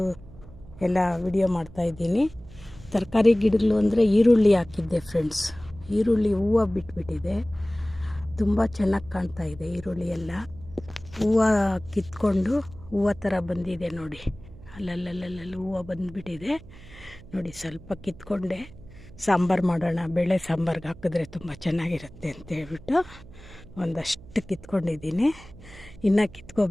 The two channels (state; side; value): noise; right; hum, 19 dB below the sound